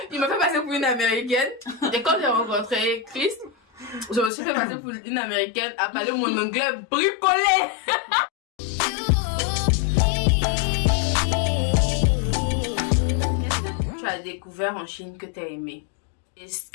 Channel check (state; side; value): drops out; right; at 4.3 s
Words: m'a fait passer pour une américaine. Et quand j'ai rencontré Chris, je me suis fait passer pour une américaine à parler mon anglais bricolé. Qu'est-ce que tu as découvert en Chine que tu as aimé? Et ce